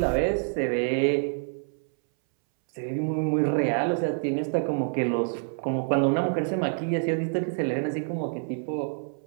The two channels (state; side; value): silent; left; 60 dB below the other